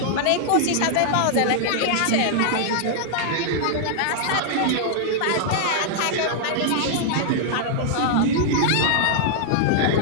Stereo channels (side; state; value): both; different; correlation -0.01